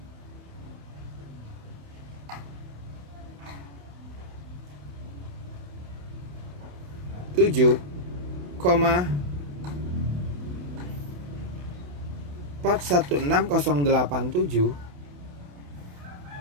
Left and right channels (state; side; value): late; left; 28 ms